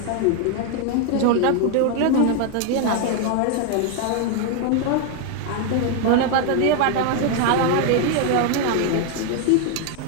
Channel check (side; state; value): both; different; correlation 0.01